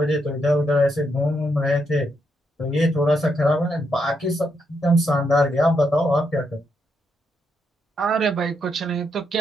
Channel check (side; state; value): both; normal; correlation 0.79